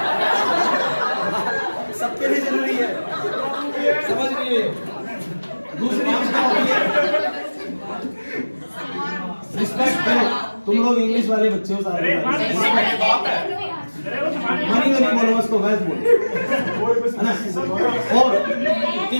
सबके लिए जरूरी है, समझ रही है? दूसरी चीज क्या होती है, रिस्पेक्ट करो। तुम लोग इंग्लिश वाले बच्चे हो सारे, मनी तो नहीं बोलो, उसको वैसे बोलो, है ना? और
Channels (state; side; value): inverted; both; correlation -1.00